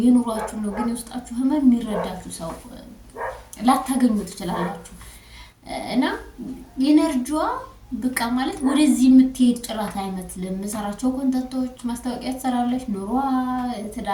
የኑሯችሁ ነው። ግን የውስጣችሁ ህመም የሚረዳችሁ ሰው ላታገኙ ትችላላችሁ። እና ኢነርጂዋ በቃ ማለት ወደዚህ የምትሄድ ጭራት አይመስልም። የምሰራቸው ኮንተንቶች ማስታወቂያ ትሰራለች፣ ኑሯ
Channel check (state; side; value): identical; both; correlation 1.00